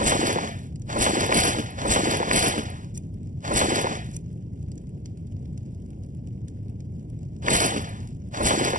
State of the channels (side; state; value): left; late; 0.38 ms